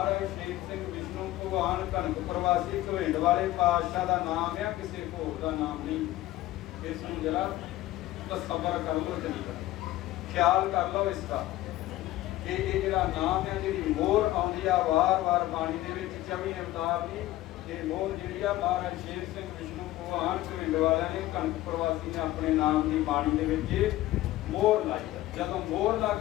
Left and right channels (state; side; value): quieter; right; 15.8 dB